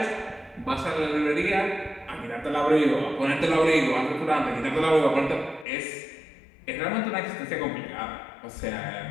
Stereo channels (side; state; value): right; drops out; at 5.7 s